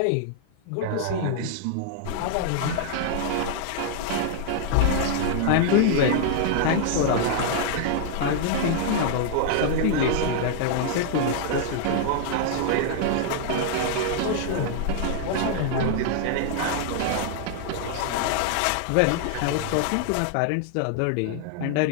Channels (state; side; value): different; both; correlation 0.00